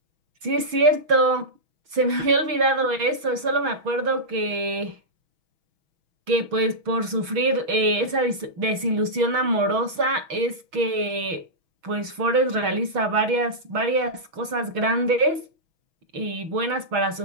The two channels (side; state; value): left; late; 6.2 ms